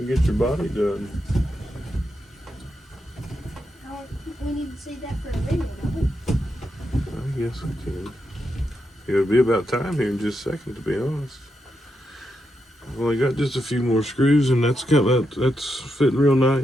get your body done. We need to save that for a video, don't we? I guess we can. It'll be about time here in just a second, to be honest. only got just a few more screws, and that's fitting real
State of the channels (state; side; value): normal; both; correlation 0.84